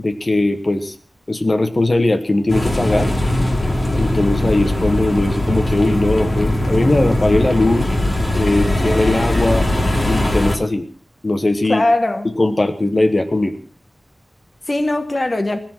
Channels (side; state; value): both; normal; correlation 0.97